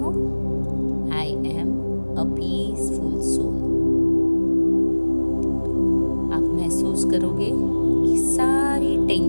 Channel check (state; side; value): inverted; both; correlation -1.00